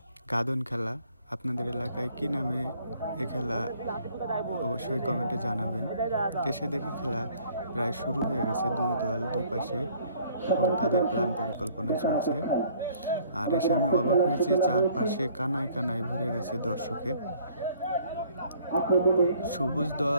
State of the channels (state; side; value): inverted; both; correlation -0.59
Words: গাদন খেলা। আপনাদের এলাকায় কি নামে এ খেলা অবশ্যই কমেন্টে জানাবেন। এসে দেখি খেলা প্রায় শুরু হয়ে গেছে, দুই দল দুপাশে এবং তাদের প্ল্যান পরিকল্পনা চলছে। আর এসে আমি অবাক হয়েছি, চারপাশে কানায় কানায় ভরে গেছে দর্শকে। সবুজ